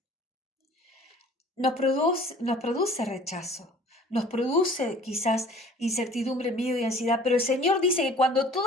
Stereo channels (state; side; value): normal; both; correlation 0.50